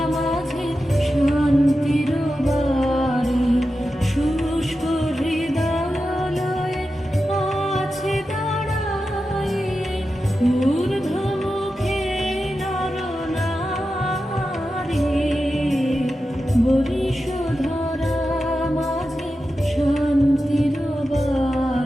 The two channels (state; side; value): normal; both; correlation 0.91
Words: মাঝে শান্তির বাড়ি শুষ্ক হৃদয়ালয়ে আছে দাঁড়াই ঊর্ধ্বমুখে নরনারী বরিশধরা মাঝে শান্তির